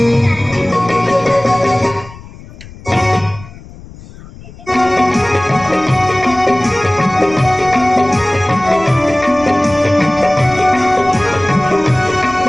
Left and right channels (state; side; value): noise; left; rumble, 18 dB below the sound